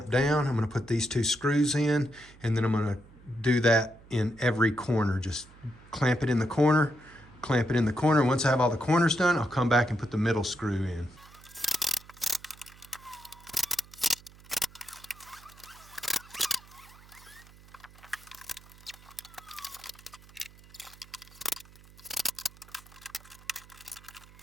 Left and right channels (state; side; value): noise; right; hum, 23 dB below the sound